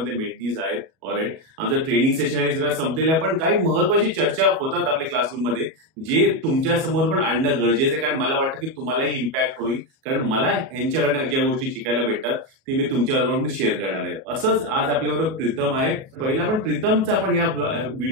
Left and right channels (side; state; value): left; late; 37 ms